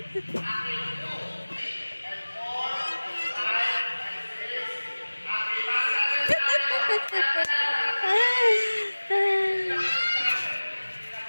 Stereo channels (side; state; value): both; inverted; correlation -1.00